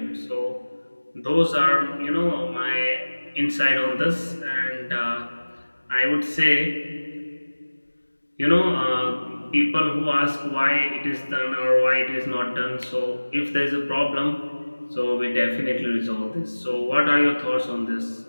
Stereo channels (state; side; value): inverted; both; correlation -1.00